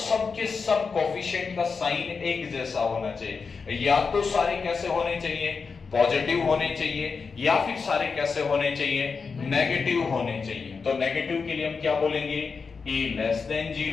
सब कोफिशिएंट का साइन एक जैसा होना चाहिए। या तो सारे कैसे होने चाहिए, पॉजिटिव होने चाहिए, या फिर सारे कैसे होने चाहिए, नेगेटिव होने चाहिए। तो नेगेटिव के लिए हम क्या बोलेंगे, a less than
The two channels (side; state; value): right; quieter; 5.1 dB